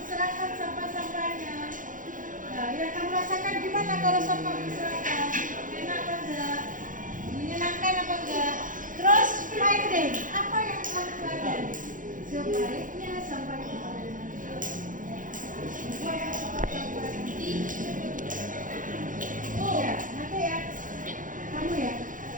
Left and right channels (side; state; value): left; late; 0.38 ms